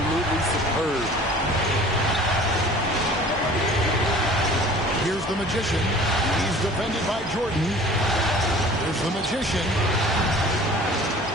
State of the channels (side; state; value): both; normal; correlation 0.46